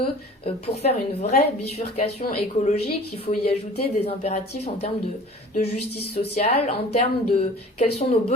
pour faire une vraie bifurcation écologique, il faut y ajouter des impératifs en termes de justice sociale, en termes de quels sont nos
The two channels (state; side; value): normal; both; correlation 0.44